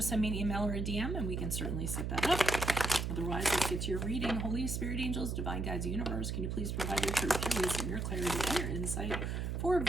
send me an email or a DM and we can certainly set that up. Otherwise, let's get to your reading. Holy Spirit, angels, divine guides, universe, can you please provide your truth, your wisdom, your clarity, and your insight for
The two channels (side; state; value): right; noise; hum, 2 dB below the sound